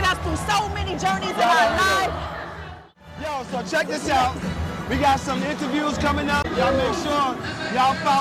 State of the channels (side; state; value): both; identical; correlation 1.00